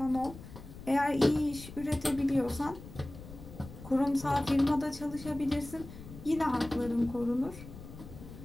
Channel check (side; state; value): left; noise; rumble, 15 dB below the sound